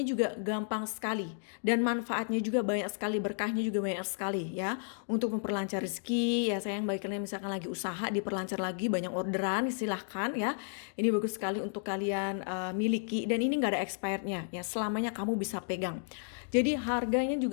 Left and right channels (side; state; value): right; silent; digital silence